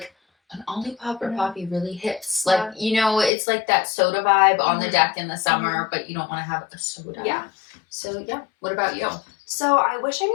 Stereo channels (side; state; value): right; drops out; at 3.3 s